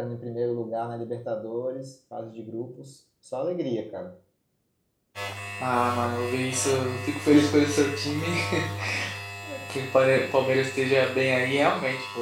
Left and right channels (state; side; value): identical; both; correlation 1.00